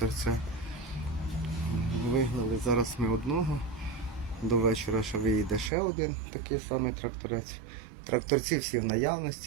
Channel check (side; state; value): left; drops out; at 5.7 s